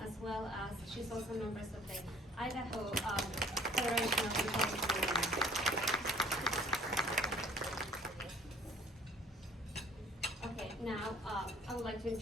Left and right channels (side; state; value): both; normal; correlation 0.53